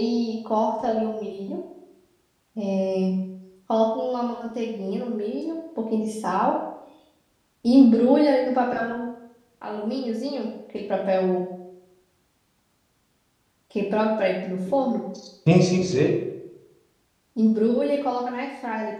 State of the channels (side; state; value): both; identical; correlation 1.00